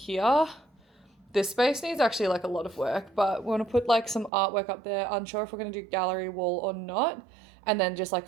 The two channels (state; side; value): drops out; left; at 4.3 s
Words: this space needs actually like a lot of work, but we want to put like some artwork up there. Unsure if we're going to do gallery wall or not, and then just like